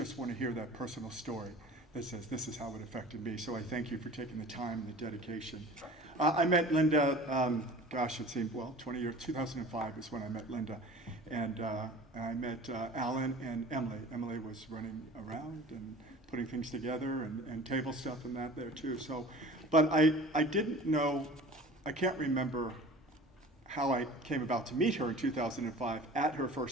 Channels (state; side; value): normal; both; correlation 0.42